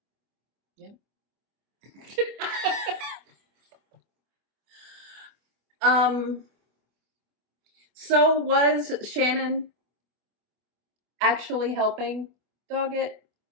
Yep. So was Shannon actually helping Doggett,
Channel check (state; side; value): late; left; 24 ms